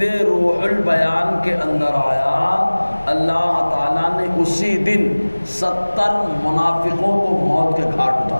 روح البیان کے اندر آیا اللہ تعالیٰ نے اسی دن 70 منافقوں کو موت کے گھاٹ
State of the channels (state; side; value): inverted; both; correlation -1.00